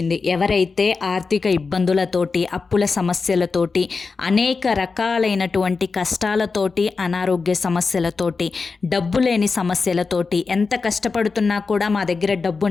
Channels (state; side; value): quieter; right; 4.5 dB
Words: ఎవరైతే ఆర్థిక ఇబ్బందులతోటి, అప్పుల సమస్యలతోటి, అనేక రకాలైనటువంటి కష్టాలతోటి, అనారోగ్య సమస్యలతోటి, డబ్బు లేని సమస్యలతోటి, ఎంత కష్టపడుతున్నా కూడా మా దగ్గర డబ్బు